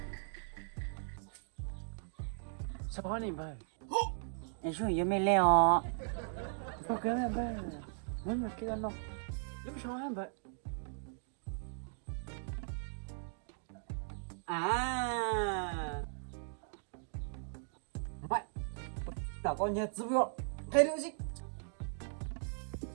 Sao này vậy? Em xuống dưới mê leo. Sao kéo em vậy? Muốn mà kia nó. Lúc sao em vậy? À. Mày. Tao con nhật giúp việc. Cái điều gì?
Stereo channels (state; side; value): silent; left; digital silence